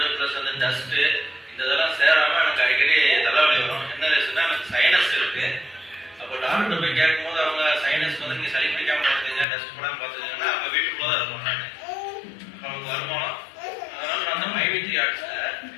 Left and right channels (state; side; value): drops out; right; at 9.5 s